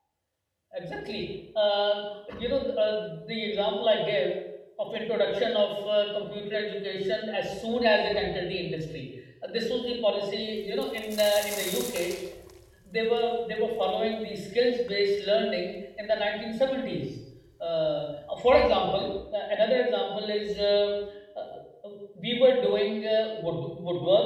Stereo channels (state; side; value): identical; both; correlation 1.00